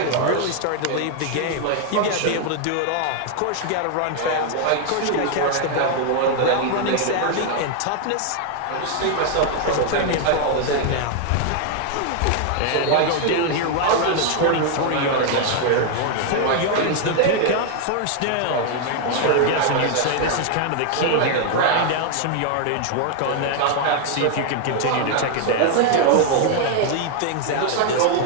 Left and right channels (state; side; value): different; both; correlation 0.00